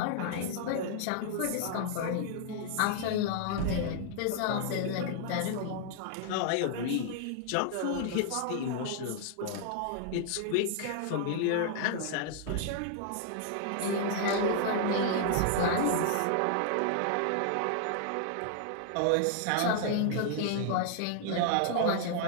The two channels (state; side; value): different; both; correlation -0.01